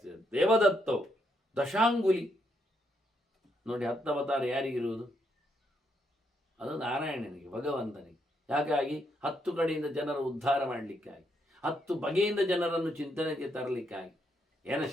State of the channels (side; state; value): both; normal; correlation 0.77